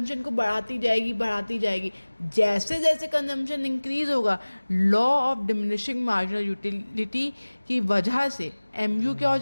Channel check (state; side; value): inverted; both; correlation -1.00